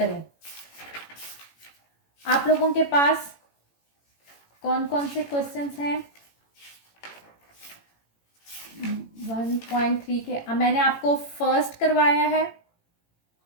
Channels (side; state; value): right; late; 18 ms